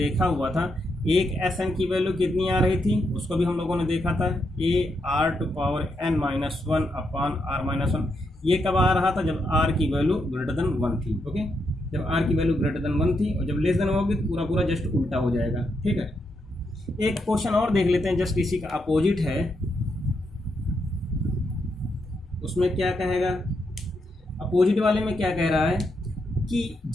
हुआ था, एक Sn की वैल्यू कितनी आ रही थी उसको भी हम लोगों ने देखा था, AR⁴n-1/R-1। ये कब आ रहा था जब R की वैल्यू ग्रेटर देन 1 थी, ओके, जब R की वैल्यू ग्रेटर देन 1 थी, और जब लेस देन होगी तो पूरा पूरा जस्ट उल्टा हो जाएगा, ठीक है। एक क्वेश्चन और देख लेते हैं, जस्ट इसी का अपोजिट है, उसमें क्या कहेगा, अपोजिट वाले में क्या कह रहा है कि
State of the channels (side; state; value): both; normal; correlation 0.81